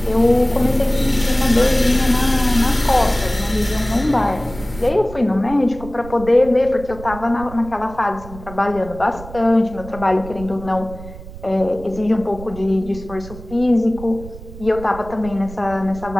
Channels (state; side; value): noise; right; rumble, 15 dB below the sound